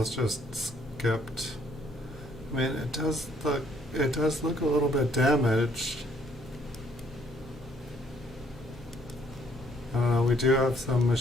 just skipped. I mean, it does look a little bit damaged. I don't know. We do have some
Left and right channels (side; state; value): both; normal; correlation 0.66